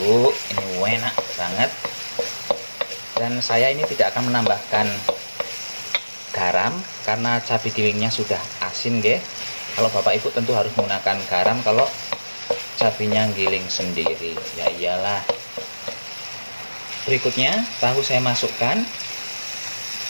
ini enak banget. Dan saya ini tidak akan menambahkan garam karena cabai gilingnya sudah asin nggih. Kalau Bapak Ibu tentu harus menggunakan garam kalau cabainya giling sendiri. Ya iyalah. Berikutnya tahu saya masukkan.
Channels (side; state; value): both; inverted; correlation -1.00